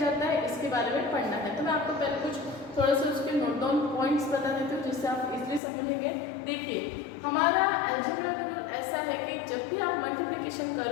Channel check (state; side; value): drops out; right; at 5.6 s